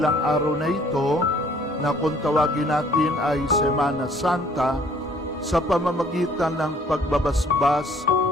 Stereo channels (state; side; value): normal; both; correlation 0.59